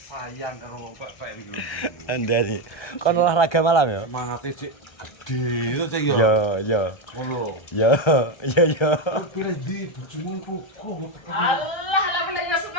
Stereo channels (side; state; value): right; late; 1.3 ms